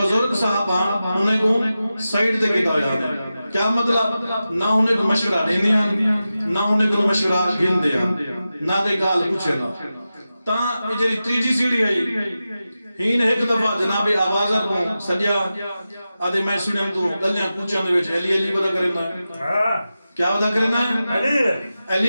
صاحبان انہیں کو سائیڈ دے کیتا ہویا کیا مطلب نہ انہیں کو مشورہ دینے آن نہ انہیں کو مشورہ گن دے آن نہ دے گال پوچھے نا تا جری تیجی سیڑھی آئی ہین ایک دفعہ جناب آوازر کو سجیا آدھے میں سنیں تو گلیاں پوچھیں دے وچ علی علی بدا کریں نا کیا ودا کرنا ہے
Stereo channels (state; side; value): inverted; both; correlation -0.93